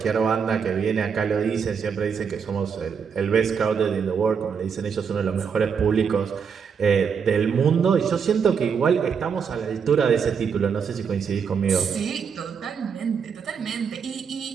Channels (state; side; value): quieter; left; 6.5 dB